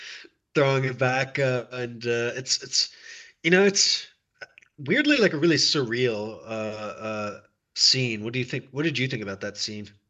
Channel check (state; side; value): identical; both; correlation 1.00